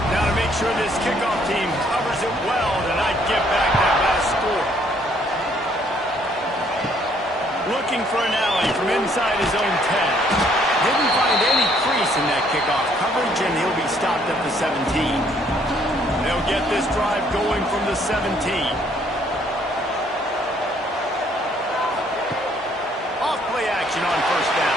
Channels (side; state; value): both; normal; correlation 0.65